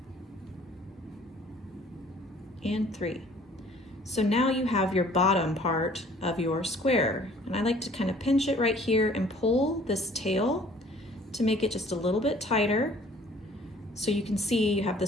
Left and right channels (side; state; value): both; normal; correlation 0.54